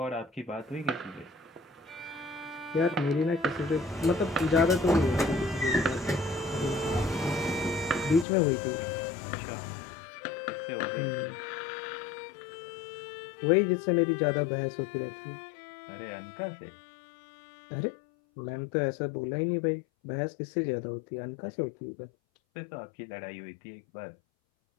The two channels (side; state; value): right; drops out; at 8.2 s